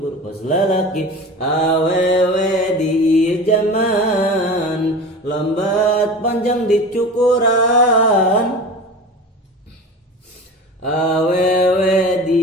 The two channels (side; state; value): both; normal; correlation 0.33